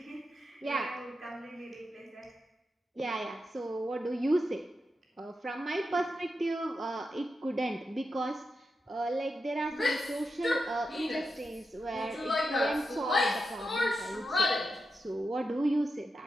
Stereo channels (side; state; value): both; normal; correlation 0.88